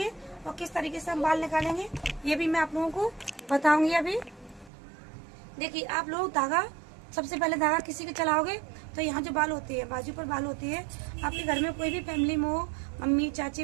और किस तरीके से हम बाल निकालेंगे ये भी मैं आप लोगों को बताऊंगी अभी। देखिए आप लोग धागा, सबसे पहले धागा किसी के चलाओगे तो यहाँ जो बाल होते हैं, बाजू पर बाल होते हैं, आपके घर में कोई भी फैमिली में हो, मम्मी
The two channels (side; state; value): left; drops out; at 4.7 s